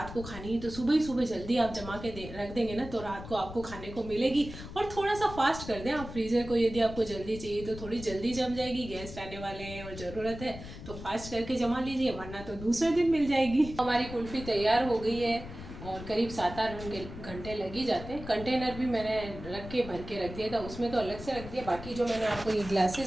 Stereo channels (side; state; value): left; noise; rumble, 12 dB below the sound